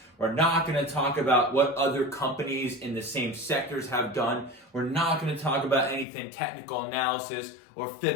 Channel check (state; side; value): drops out; right; at 6.1 s